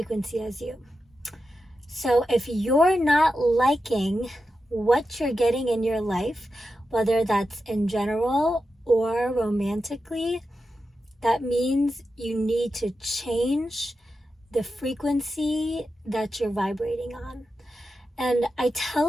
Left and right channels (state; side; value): normal; both; correlation 0.90